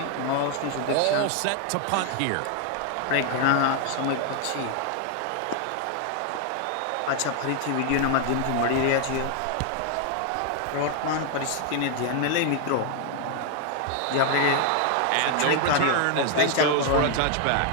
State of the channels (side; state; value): both; different; correlation 0.00